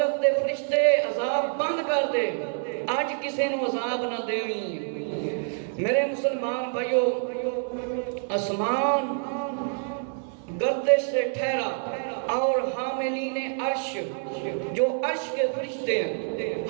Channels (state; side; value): silent; left; 60 dB below the other